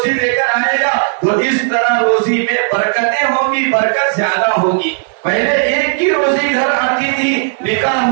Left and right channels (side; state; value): left; silent; digital silence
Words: لے کر آئے گا، تو اس طرح روزی میں برکتیں ہوں گی، برکت زیادہ ہوگی۔ پہلے ایک کی روزی گھر آتی تھی، نکاح